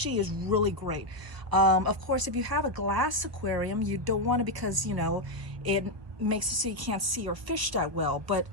is really great. Of course, if you have a glass aquarium, you don't want to, because you know it makes it so you can't see your fish that well. But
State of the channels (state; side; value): late; left; 1.0 ms